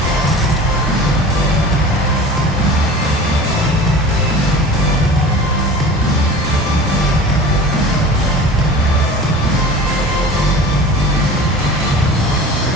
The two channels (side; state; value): both; normal; correlation 0.39